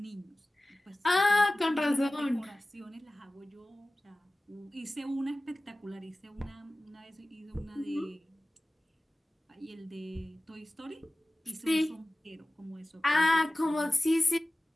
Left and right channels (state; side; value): normal; both; correlation 0.97